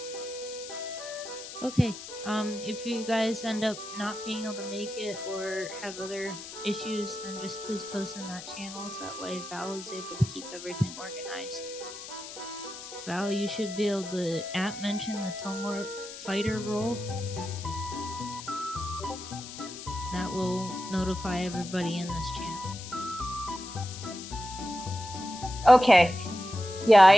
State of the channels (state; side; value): noise; left; hiss, 12 dB below the sound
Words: Okay, if you guys end up not being able to make it or have other issues, then just please post in that channel so that way Val is able to keep everything organized. Val, you should be able to app mention the Tumult fighter role. That will notify everybody in this channel. Okay. Yeah,